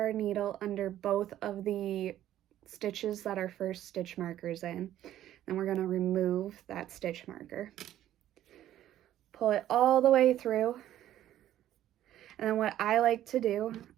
needle under both of the stitches that our first stitch marker's in. Then we're going to remove that stitch marker. Pull it all the way through. And then what I like to do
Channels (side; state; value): left; quieter; 12.5 dB